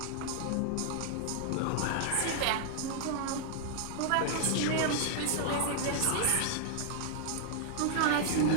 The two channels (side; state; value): both; different; correlation -0.01